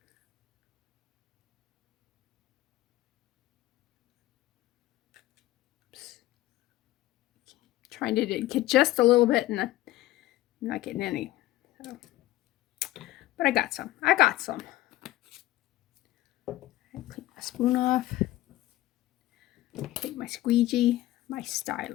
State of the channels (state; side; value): quieter; right; 16.2 dB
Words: Oops. Trying to get just a little bit and I'm not getting any. So. But I got some. I clean my spoon off. Take my squeegee, my